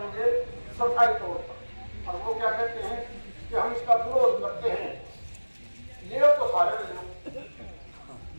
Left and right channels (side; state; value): both; inverted; correlation -1.00